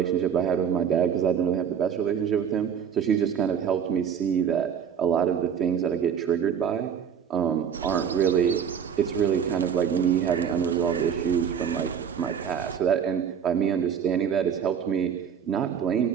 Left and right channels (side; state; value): left; quieter; 7.9 dB